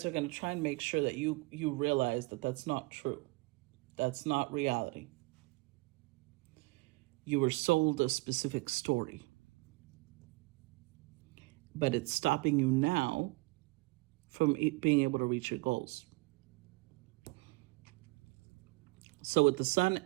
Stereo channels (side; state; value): left; quieter; 25.3 dB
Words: are going to try and make sure that you realize that that's not true. That's not reality. You were sold a specific story, but it's stopping you now from being able to reach your goals. So with the Sun